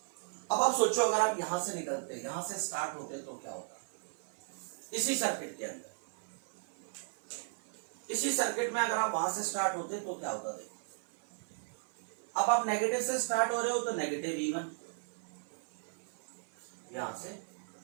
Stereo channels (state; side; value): silent; left; digital silence